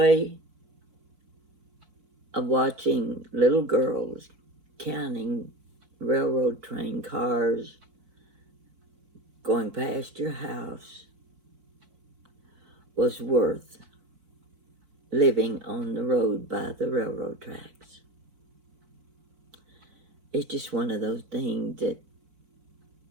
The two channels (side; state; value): left; late; 4.5 ms